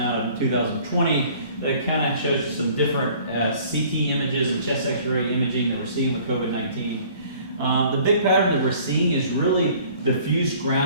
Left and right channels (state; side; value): inverted; both; correlation -0.53